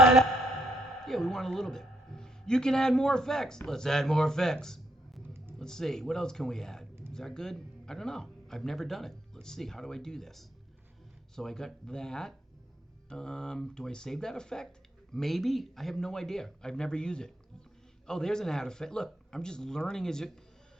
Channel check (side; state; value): both; normal; correlation 0.73